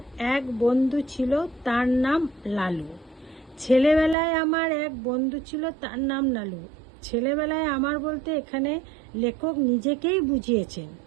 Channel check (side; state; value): left; drops out; at 4.2 s